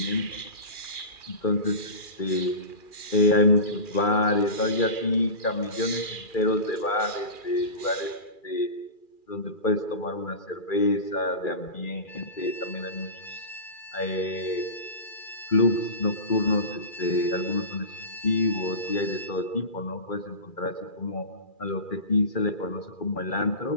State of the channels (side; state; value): right; late; 2.4 ms